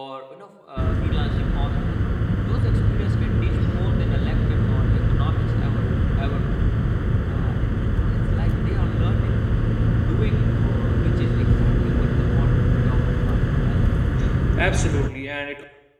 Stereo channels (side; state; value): both; identical; correlation 1.00